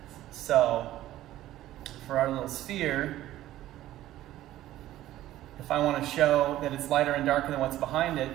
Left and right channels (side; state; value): left; quieter; 14.2 dB